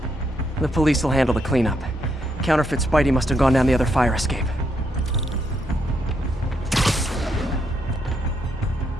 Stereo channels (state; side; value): normal; both; correlation 0.77